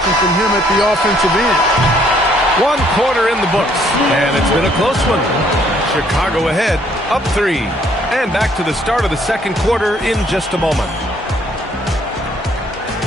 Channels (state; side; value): normal; both; correlation 0.65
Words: from him at the offensive end. 1 quarter in the books, and it's been a close one. Chicago ahead, up 3. And back to the start of the second quarter in just a moment.